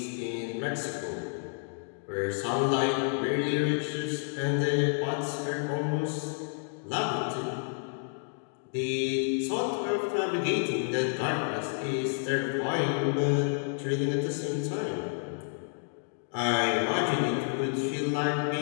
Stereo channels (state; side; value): silent; right; digital silence